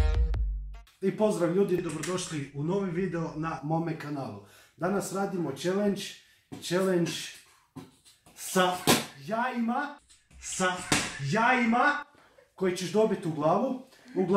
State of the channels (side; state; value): both; identical; correlation 1.00